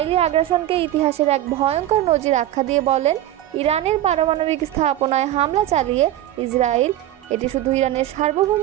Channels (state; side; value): quieter; left; 13.5 dB